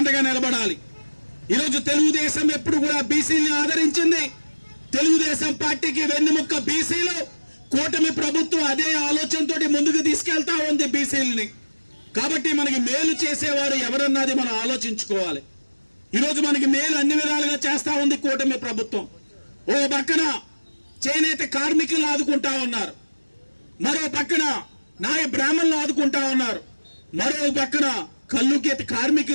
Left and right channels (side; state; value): both; inverted; correlation -1.00